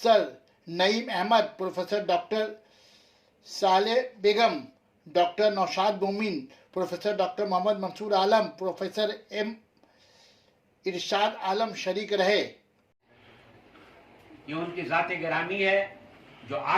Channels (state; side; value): identical; both; correlation 1.00